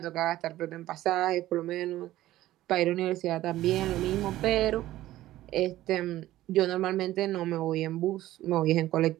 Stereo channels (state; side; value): quieter; left; 15.0 dB